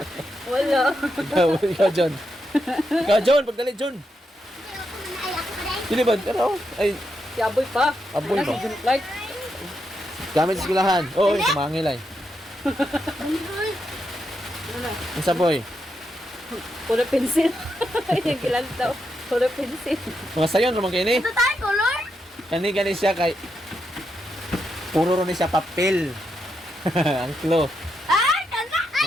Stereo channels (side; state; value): both; normal; correlation 0.83